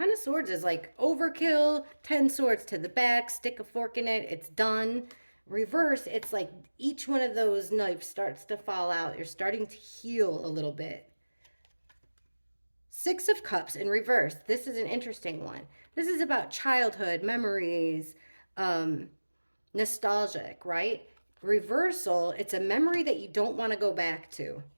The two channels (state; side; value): inverted; both; correlation -1.00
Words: of Swords is like overkill. 10 swords to the back, stick a fork in it, it's done. Reverse, it's like each one of those knives starts to fall out. You're starting to heal a little bit. Six of Cups in reverse. This is an interesting one. This is about childhood, memories, nostalgic, right? Reversal, it's a memory that you don't want to go back to.